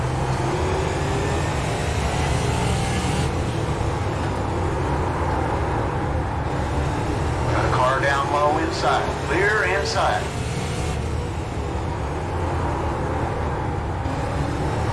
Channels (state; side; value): identical; both; correlation 1.00